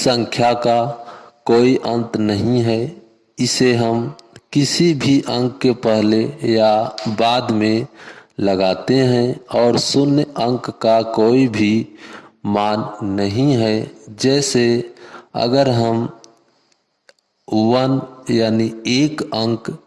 का कोई अंत नहीं है। इसे हम किसी भी अंक के पहले या बाद में लगाते हैं और शून्य अंक का कोई भी मान नहीं है। जैसे अगर हम 1 यानी 1 अंक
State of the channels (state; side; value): identical; both; correlation 1.00